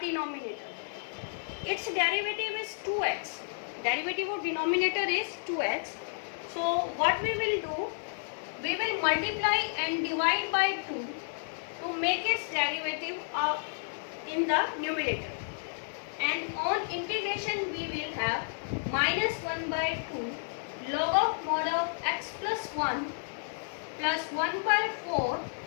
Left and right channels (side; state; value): right; silent; 57 dB below the other